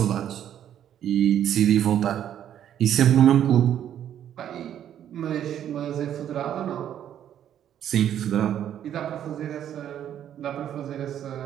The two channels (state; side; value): quieter; left; 10.3 dB